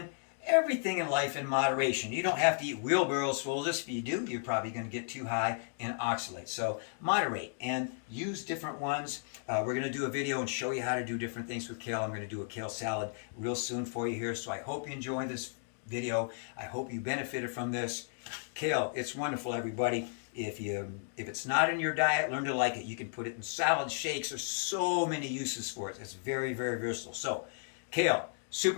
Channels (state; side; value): silent; right; digital silence